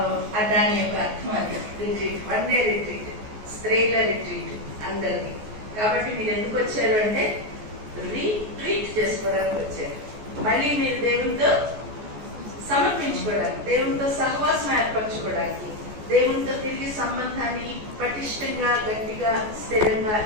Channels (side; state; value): left; late; 14 ms